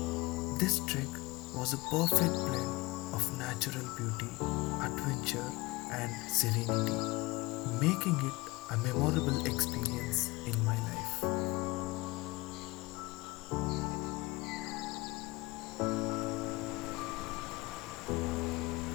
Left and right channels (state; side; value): quieter; right; 22.3 dB